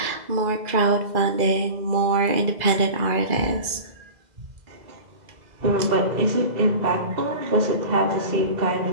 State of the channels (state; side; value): late; left; 2.0 ms